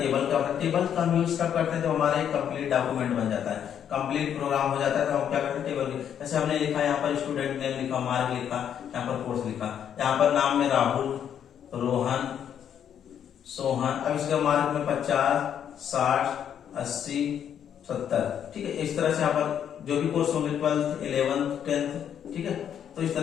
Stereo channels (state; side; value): quieter; right; 9.0 dB